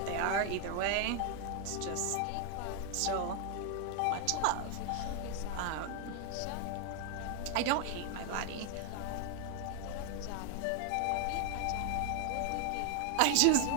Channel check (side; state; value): both; different; correlation 0.00